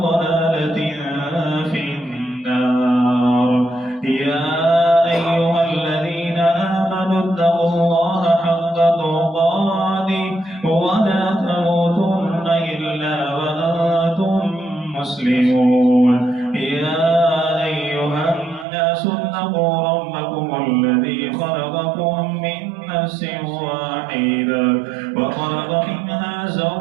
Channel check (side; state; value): left; drops out; at 18.7 s